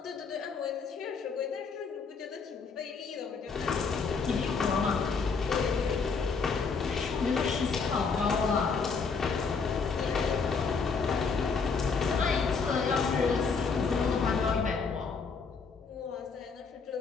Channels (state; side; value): quieter; right; 5.1 dB